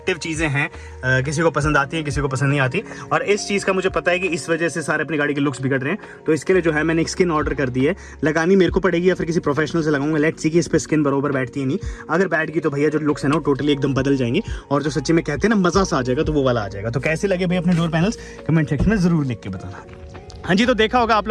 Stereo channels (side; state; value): both; identical; correlation 1.00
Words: चीज़ें हैं, किसी को पसंद आती है, किसी को पसंद नहीं आती। और इस चीज़ का मुझे पता है कि इस वजह से सारे अपनी गाड़ी के लुक्स बिगड़ रहे हैं, तो इसके लिए जो है मैंने एक स्किन ऑर्डर कर दी है। लगानी मेरे को पड़ेगी या फिर किसी प्रोफेशनल से लगाऊंगा, लेट्स सी कि इस पर स्किन बरोबर बैठती है नहीं। अगर बैठ गई तो भैया जो लुक्स है ना वो टोटली एकदम बदल जाएंगे, और जो सच्ची में कहते हैं ना मज़ा सा आ जाएगा, तो वो वाला आ जाएगा। तो कैसे लगे भाई अपने डोर पैनल्स कमेंट सेक्शन में ज़रूर लिख के बताना। हाँ जी, तो देखा होगा आप